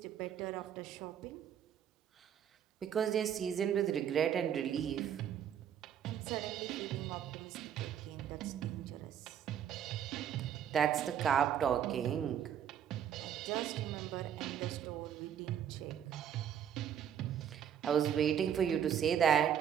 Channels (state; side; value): quieter; left; 9.1 dB